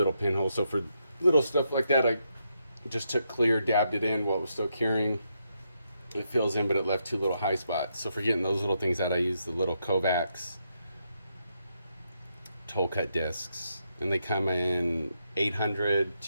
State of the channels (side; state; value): both; inverted; correlation -0.80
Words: pinholes. So for little stuff like that, I just took clear, dabbed it in while it was still curing. It fills in, but it left two little high spots. So for getting those little things out, I use the little Kovacs toll cut discs, and they come in 800